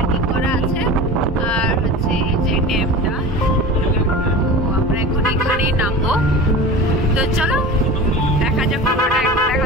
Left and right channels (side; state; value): both; normal; correlation 0.33